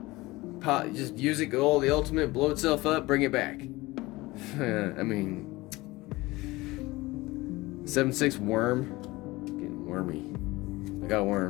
Just use it, go all the ultimate, blow itself up, bring it back. I mean... 7/6 worm. Getting wormy. I got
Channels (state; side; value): quieter; right; 20.6 dB